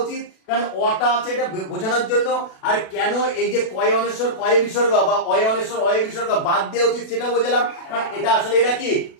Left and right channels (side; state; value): right; late; 36 ms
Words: উচিত, কারণ অটা আছে এটা বোঝানোর জন্য, আর কেন এই যে কয় অনেশ্বর কয় বিসর্গ বা অয় অনেশ্বর অয় বিসর্গ বাদ দেওয়া উচিত সেটা বোঝালাম। কারণ এটা আসলে এরা কি